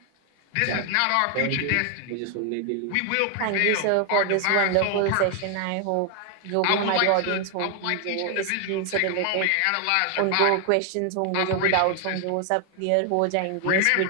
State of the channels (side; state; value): both; different; correlation 0.00